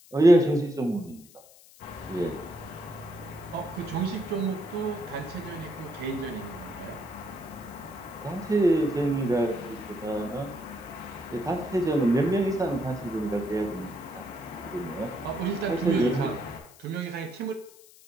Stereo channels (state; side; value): noise; left; hiss, 23 dB below the sound